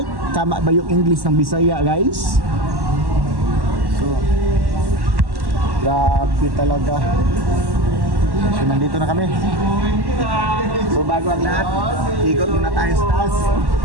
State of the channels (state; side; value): late; left; 1.1 ms